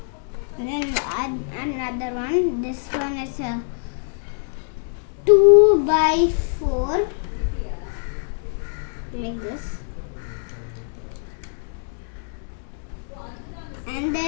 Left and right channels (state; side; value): silent; right; digital silence